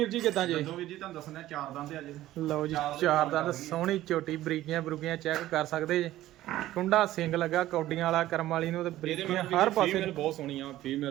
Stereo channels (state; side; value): quieter; left; 14.7 dB